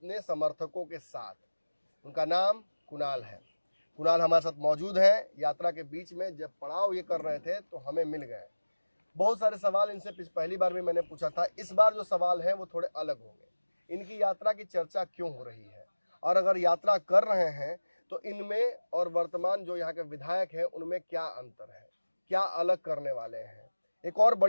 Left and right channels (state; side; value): inverted; both; correlation -1.00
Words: समर्थकों के साथ। उनका नाम कुणाल है। कुणाल हमारे साथ मौजूद है। यात्रा के बीच में जब पड़ाव ये कर रहे थे तो हमें मिल गए। बहुत सारे सवाल इनसे पहली बार भी मैंने पूछा था। इस बार जो सवाल हैं वो थोड़े अलग होंगे। इनकी यात्रा की चर्चा क्यों हो रही है, और अगर यात्रा कर रहे हैं तो इनमें और वर्तमान जो यहाँ के विधायक हैं उनमें क्या अंतर है, क्या अलग करने वाले हैं। एक और